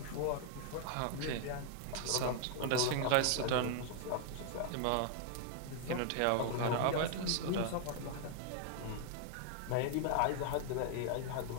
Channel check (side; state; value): both; different; correlation 0.00